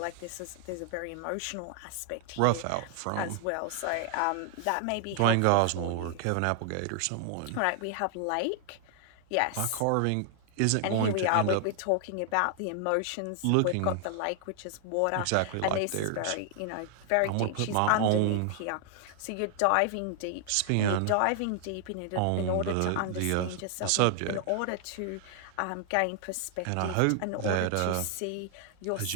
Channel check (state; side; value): different; both; correlation 0.00